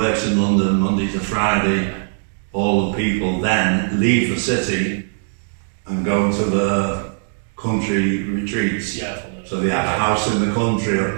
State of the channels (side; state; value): left; silent; digital silence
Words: in London Monday to Friday. All the people then leave the city and go to the country retreats. Yeah. So they had a house in the country,